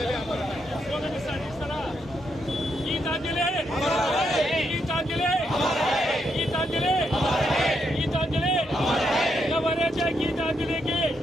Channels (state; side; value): normal; both; correlation 0.79